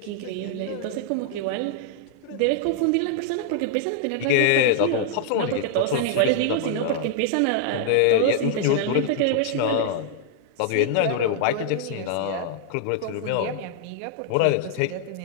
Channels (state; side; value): different; both; correlation -0.01